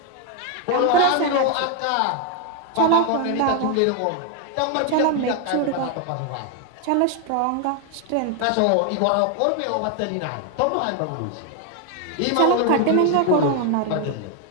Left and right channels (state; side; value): different; both; correlation 0.01